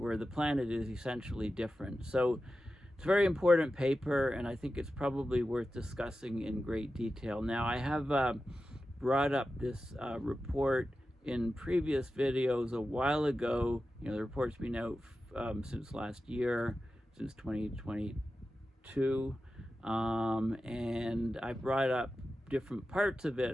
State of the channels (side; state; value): both; normal; correlation 0.92